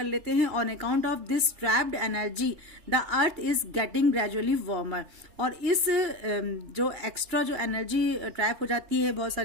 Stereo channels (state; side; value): late; left; 2.9 ms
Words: लेते हैं। On account of this trapped energy the earth is getting gradually warmer, और इस जो एक्स्ट्रा जो एनर्जी ट्रैप हो जाती है बहुत